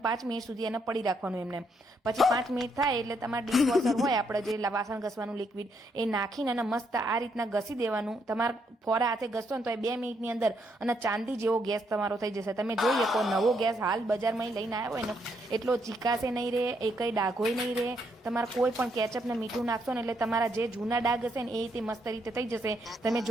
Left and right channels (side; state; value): both; normal; correlation 0.75